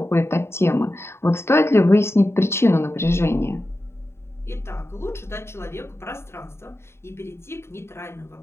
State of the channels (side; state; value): right; late; 0.12 ms